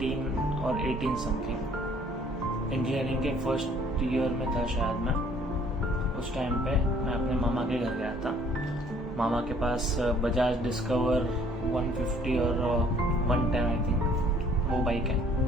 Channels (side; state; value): both; normal; correlation 0.58